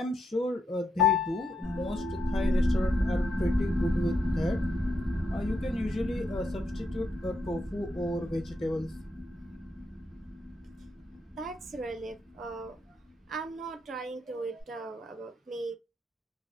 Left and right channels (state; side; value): normal; both; correlation 0.80